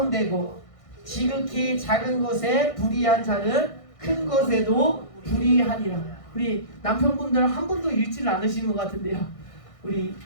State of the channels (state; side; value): late; right; 1.6 ms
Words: 지극히 작은 것에 불의한 자는 큰 것에도 불의하니라. 우리 남편분들 한 분도 읽지를 않으시는 것 같은데요, 우리